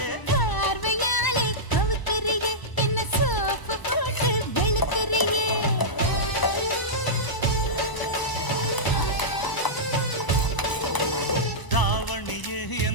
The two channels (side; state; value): right; late; 1.0 ms